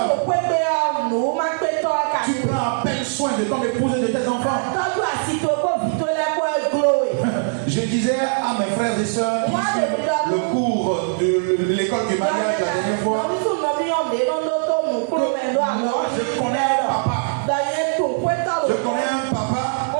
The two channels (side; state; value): left; silent; digital silence